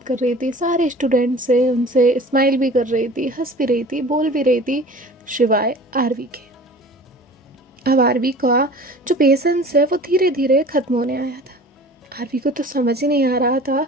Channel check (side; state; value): both; normal; correlation 0.43